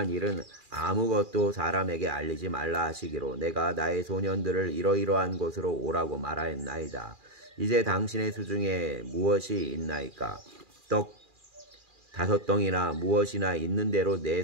일은 아무것도 사람에게 알리지 말라 하시기로 내가 나의 소년들을 이러이러한 곳으로 오라고 말하였나이다. 이제 당신의 수중에 무엇이 있나이까? 떡 5덩이나 무엇이나 있는 대로 내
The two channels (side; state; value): left; late; 2.4 ms